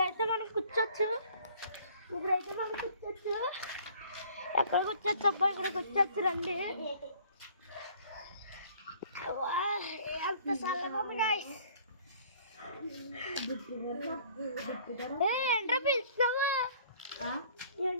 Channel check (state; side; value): inverted; both; correlation -0.54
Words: మనం కూర్చోచ్చు. ఎక్కడ కూర్చోచ్చు అబ్బా? ఇక్కడ కూర్చోచ్చు రండి. ఎంత చల్లగా ఉంది గైస్. ఏంట్రా పిలుస్తున్నావు?